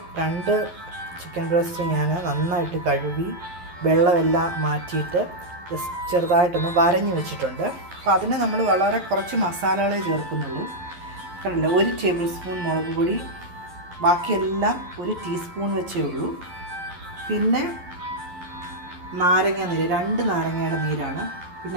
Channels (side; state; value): left; late; 11 ms